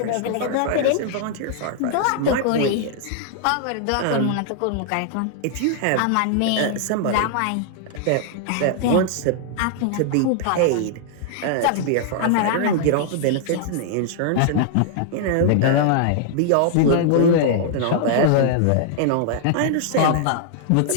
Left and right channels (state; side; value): different; both; correlation -0.01